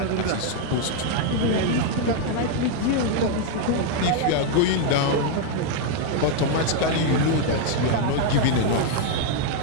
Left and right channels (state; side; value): different; both; correlation 0.00